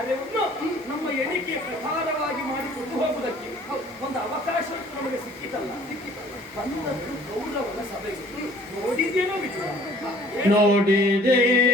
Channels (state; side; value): normal; both; correlation 0.54